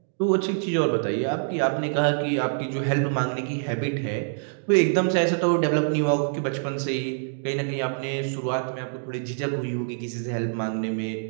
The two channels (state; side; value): silent; left; digital silence